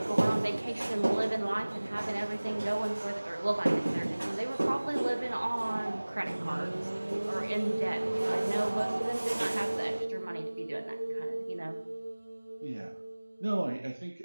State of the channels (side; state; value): both; inverted; correlation -1.00